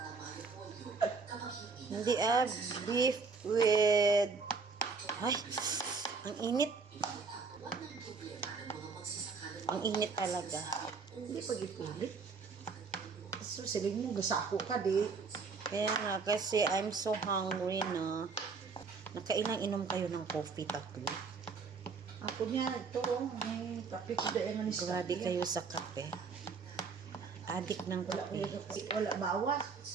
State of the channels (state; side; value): quieter; left; 4.8 dB